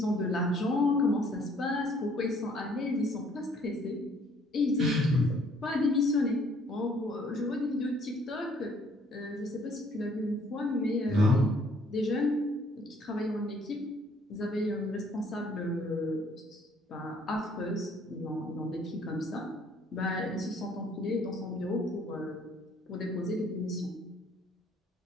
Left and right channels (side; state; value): both; normal; correlation 0.62